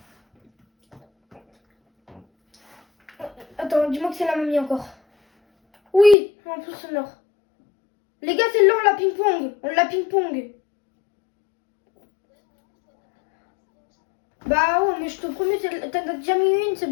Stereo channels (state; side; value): drops out; right; at 6.2 s